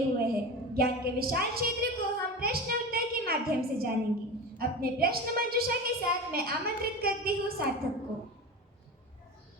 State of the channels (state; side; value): normal; both; correlation 0.28